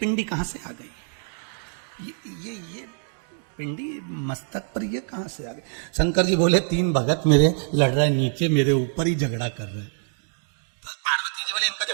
कहां से आ गई? ये पिंडी मस्तक पर ये कहां से आ गई? शंकर जी बोले 3 भगत मेरे लड़ रहे नीचे, मेरे ऊपर ही झगड़ा कर रहे। तो पार्वती जी बोले इनका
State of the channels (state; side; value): silent; left; digital silence